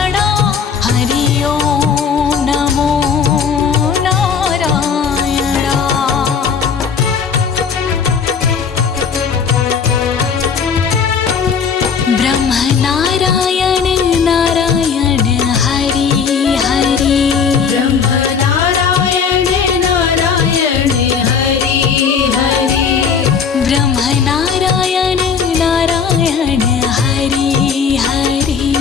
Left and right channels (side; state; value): right; quieter; 6.4 dB